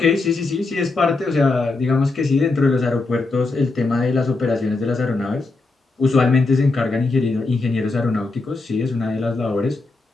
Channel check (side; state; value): right; quieter; 3.5 dB